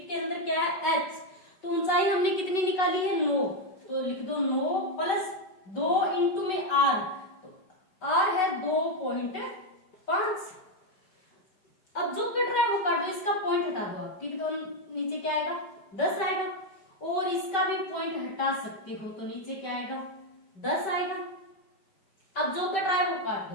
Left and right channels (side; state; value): right; late; 5.2 ms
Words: के अंदर क्या है h, तो ऊंचाई हमने कितनी निकाली है 9, तो लिख दो 9 प्लस 2 इंटू में आर, तो आर है 2.5। अब जो कट रहा है वो काट दो, इसका पॉइंट हटा दो आप, ठीक, तो नीचे क्या आएगा 10 आएगा, और इसका भी पॉइंट हटा सकते हो, तो नीचे क्या आएगा 10 आएगा। अब जो कट रहा है वो काट